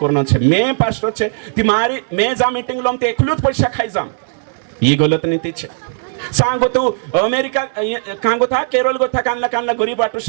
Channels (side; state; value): left; silent; digital silence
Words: करना छे मैं पास्टर छे तुम्हारी मैं जा मीटिंग लम ते एकलूत पैसा खाई जाम ये गलत नीति छे सांगो तो अमेरिका कांगो था केरल गो था कानला गरीब बाटू